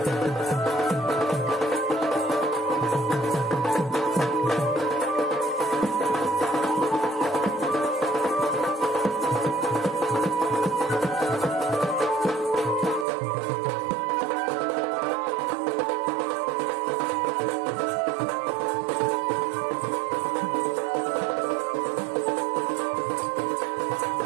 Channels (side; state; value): left; drops out; at 13.1 s